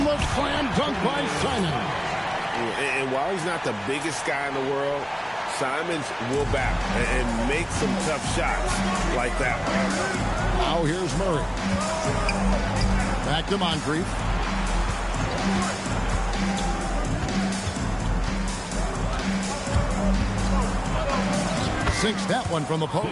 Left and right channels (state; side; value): identical; both; correlation 1.00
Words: the slam dunk by Simons. And while he's not the biggest guy in the world, Simons will back and make some tough shots like that. Now here's Murray. Back to Moncrief. Sinks that one from the